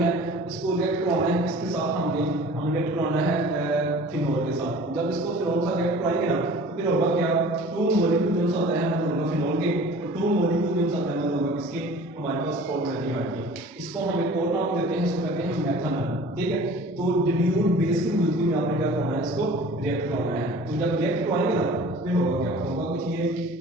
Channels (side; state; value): both; normal; correlation 0.44